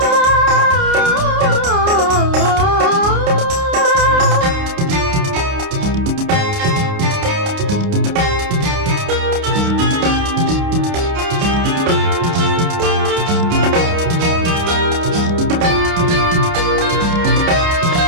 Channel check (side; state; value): left; late; 29 ms